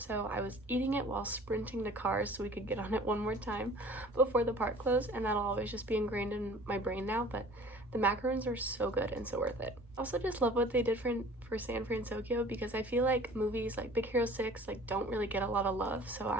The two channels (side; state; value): both; normal; correlation 0.47